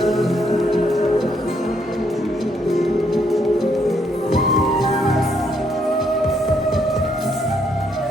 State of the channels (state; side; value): normal; both; correlation 0.72